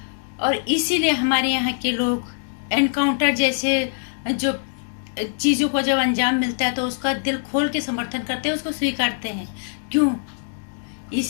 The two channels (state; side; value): silent; right; digital silence